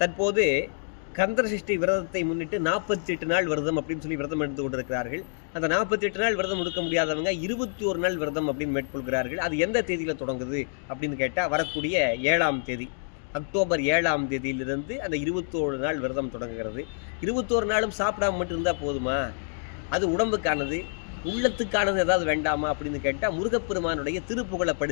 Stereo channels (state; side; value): silent; right; digital silence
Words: தற்போது கந்தசஷ்டி விரதத்தை முன்னிட்டு 48 நாள் விரதம் அப்படின்னு சொல்லி விரதம் எடுத்து கொண்டிருக்கிறார்கள். அந்த 48 நாள் விரதம் எடுக்க முடியாதவங்க 21 நாள் விரதம் அப்படின்னு மேற்கொள்கிறார்கள். அது எந்த தேதியில் தொடங்குது அப்படின்னு கேட்டால் வரக்கூடிய 7ஆம் தேதி, அக்டோபர் 7ஆம் தேதியிலிருந்து அந்த 21 நாள் விரதம் தொடங்குகிறது. 21 நாளும் சாப்பிடாம மட்டும் இருந்தால் போதுமா? அது உடம்புக்கானது, உள்ளத்துக்கானது ஏதாவது வேண்டாமா அப்படின்னு கேட்டால் முருகப்பெருமானுடைய திருப்புகழை